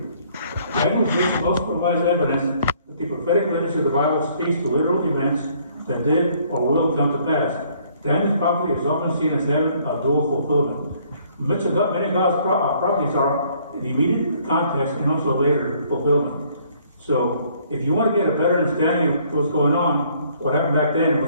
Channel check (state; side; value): inverted; both; correlation -0.62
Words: Daniel's vision also provides evidence that the prophetic literature of the Bible speaks to literal events that did or will come to pass. Daniel's prophecy is often seen as having a dual fulfillment. Many of God's prophecies are in immediate context and also later fulfillment. So, if you want to get a better understanding of what's going on, what happened back then, and